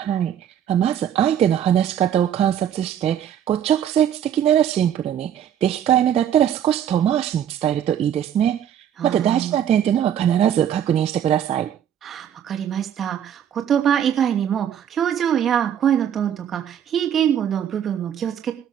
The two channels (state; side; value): quieter; left; 9.7 dB